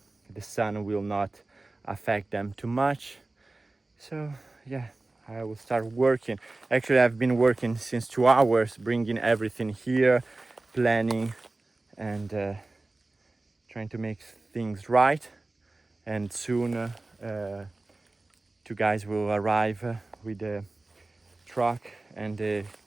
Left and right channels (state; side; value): quieter; left; 3.1 dB